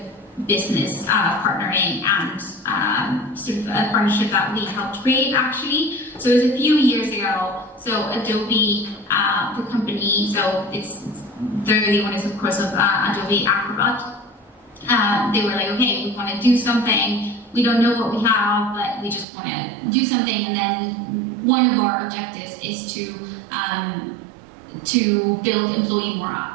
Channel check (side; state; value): left; drops out; at 19.2 s